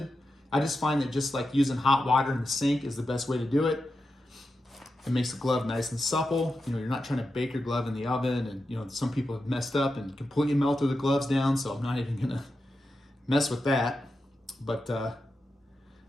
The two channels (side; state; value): both; normal; correlation 0.89